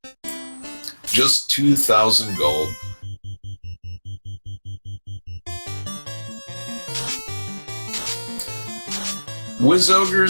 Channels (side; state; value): both; inverted; correlation -1.00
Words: Just 2,000 gold. Wiz